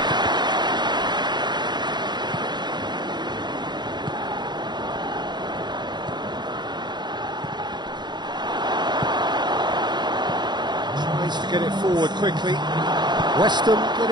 Tries to get it forward quickly. Westham get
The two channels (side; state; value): left; late; 0.21 ms